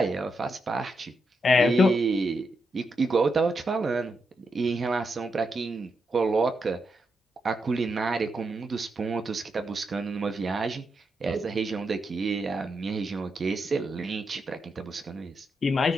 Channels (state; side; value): normal; both; correlation 0.83